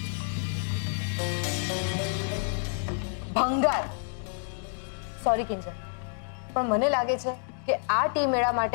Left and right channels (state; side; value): silent; right; digital silence